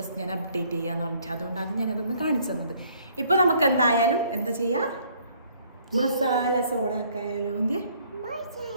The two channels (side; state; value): both; inverted; correlation -0.62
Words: ഞാൻ അപ്ഡേറ്റ് ചെയ്യാന്ന് പറഞ്ഞിട്ട്, അതുകൊണ്ടാണ് ഞാനതൊന്ന് കാണിച്ചു തന്നത്. ഇപ്പോൾ നമുക്ക് എന്തായാലും എന്താ ചെയ്യുക, മസാല സോഡ ആക്കായാലോ.